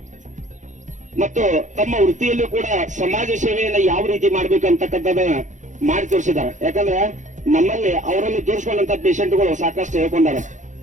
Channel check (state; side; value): late; left; 0.36 ms